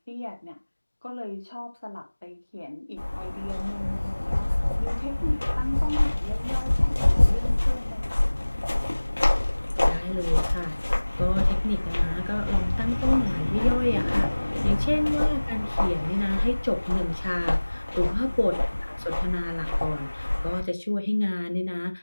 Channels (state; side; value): inverted; both; correlation -1.00